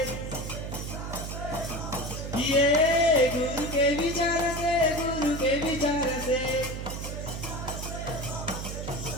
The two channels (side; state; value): right; noise; hum, 6 dB below the sound